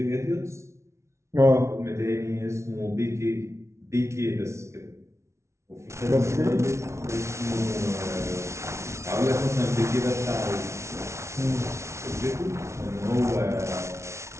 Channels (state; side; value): late; left; 0.13 ms